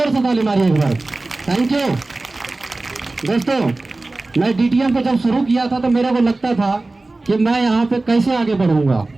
से ताली मारिए एक बार। Thank you. दोस्तों, मैं डीटीएम को जब शुरू किया था तो मेरे को लगता था कि मैं यहाँ पे कैसे आगे बढ़ूंगा।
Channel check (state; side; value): quieter; left; 3.1 dB